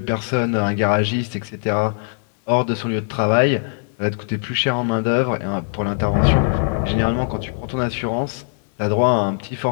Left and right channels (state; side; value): silent; right; digital silence